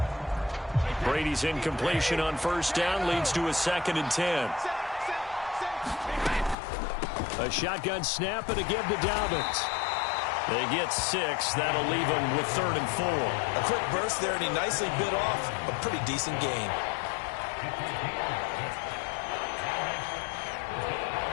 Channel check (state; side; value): drops out; right; at 6.6 s